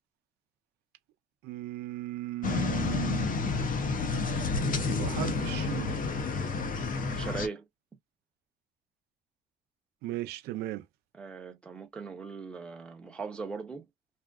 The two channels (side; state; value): both; normal; correlation 0.36